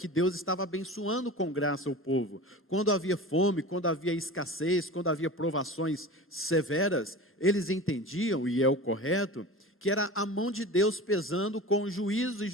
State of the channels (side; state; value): both; normal; correlation 0.33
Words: Deus estava abençoando com graça o povo. Quando havia fome, quando havia escassez, quando havia provações severas, eles entendiam, e é o correto, que era a mão de Deus pesando com juízo e